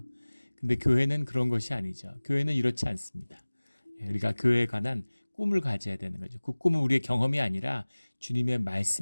근데 교회는 그런 것이 아니죠. 교회는 이렇지 않습니다. 우리가 교회에 관한 꿈을 가져야 되는 거죠. 그 꿈은 우리의 경험이 아니라 주님의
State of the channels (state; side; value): inverted; both; correlation -1.00